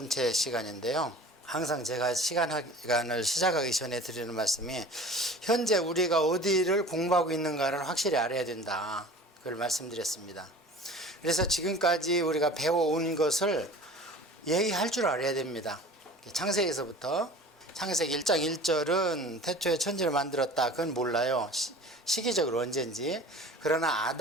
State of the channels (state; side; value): normal; both; correlation 0.42